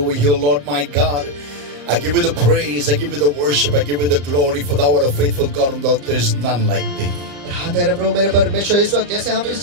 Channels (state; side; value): late; left; 35 ms